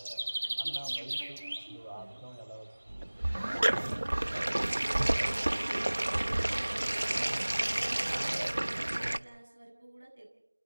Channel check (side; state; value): both; inverted; correlation -1.00